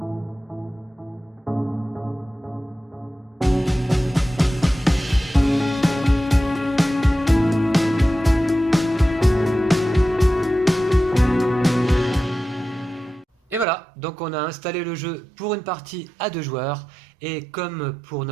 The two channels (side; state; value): left; drops out; at 13.7 s